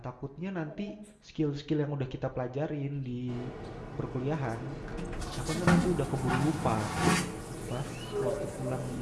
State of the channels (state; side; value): identical; both; correlation 1.00